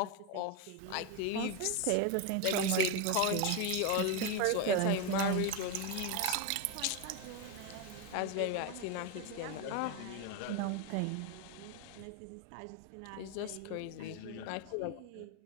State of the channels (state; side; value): different; both; correlation 0.02